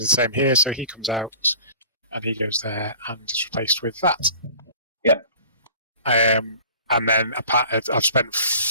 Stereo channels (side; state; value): both; inverted; correlation -0.46